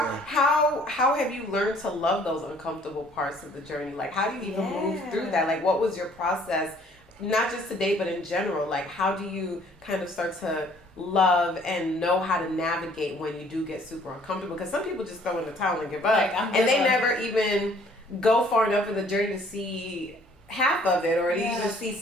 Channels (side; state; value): both; normal; correlation 0.59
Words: How have you learned to love those uncomfortable parts of the journey? How do you even move through that? What was your process? Not just today, but in general. How do you kind of start to love and know how to navigate when you do get super uncomfortable? Because some people just throw in the towel and give up, and they never even go far enough in the journey to see half of it, or to even see